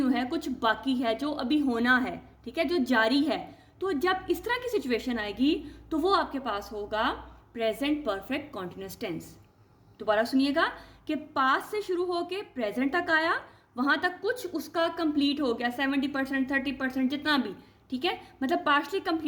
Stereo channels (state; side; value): identical; both; correlation 1.00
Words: है, कुछ बाकी है जो अभी होना है। ठीक है, जो जारी है। तो जब इस तरह की सिचुएशन आएगी तो वो आपके पास होगा प्रेजेंट परफेक्ट कॉन्टिन्यूस टेंस। दोबारा सुनिएगा कि पास्ट से शुरू होके प्रेजेंट तक आया, वहां तक कुछ उसका कंप्लीट हो गया, 70%, 30%, जितना भी। ठीक है, मतलब पार्शली